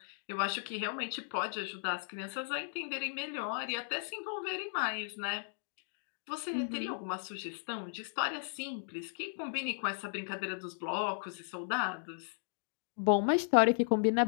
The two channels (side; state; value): right; silent; digital silence